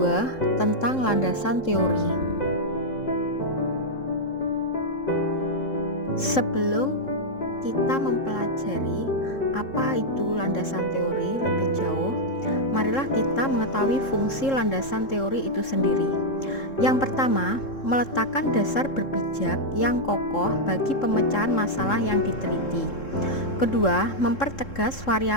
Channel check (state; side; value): late; right; 3.7 ms